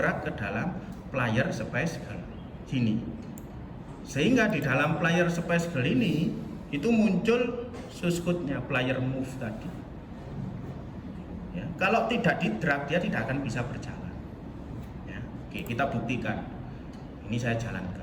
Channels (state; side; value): identical; both; correlation 1.00